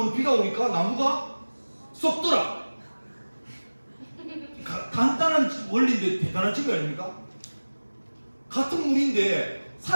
비가 오니까 나무가 썩더라. 간단한 원리인데 대단한 증거 아닙니까? 같은 물인데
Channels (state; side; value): inverted; both; correlation -1.00